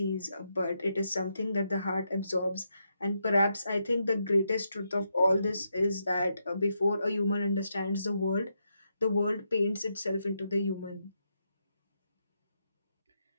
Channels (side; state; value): both; inverted; correlation -0.82